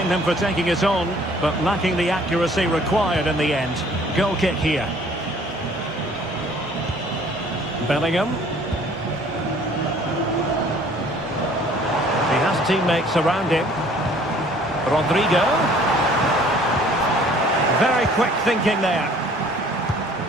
him for taking it on, but lacking the accuracy required in the end. Goal kick here. Bellingham. He has teammates around him. Rodrigo. Very quick thinking there.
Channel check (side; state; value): both; normal; correlation 0.55